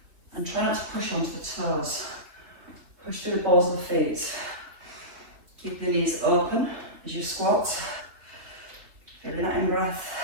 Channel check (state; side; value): late; left; 3.1 ms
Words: And try not to push onto the toes. Push through the balls of the feet. Keep the knees open as you squat. Feeling that in-breath.